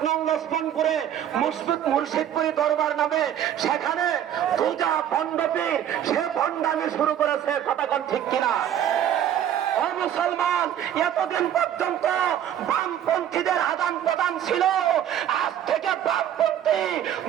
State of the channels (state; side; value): quieter; left; 10.5 dB